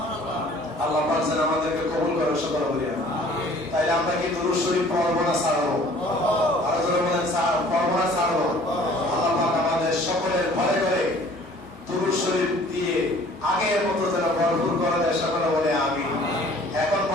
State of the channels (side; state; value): both; normal; correlation 0.52